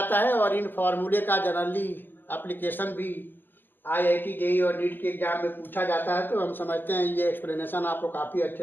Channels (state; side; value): late; right; 0.094 ms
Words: है, और इन फॉर्मूले का जनरली एप्लीकेशन भी IIT JEE और नीट के एग्जाम में पूछा जाता है। तो हम समझते हैं ये एक्सप्लेनेशन आपको काफ़ी